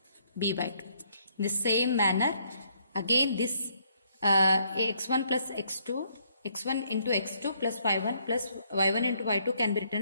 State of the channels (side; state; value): both; inverted; correlation -0.70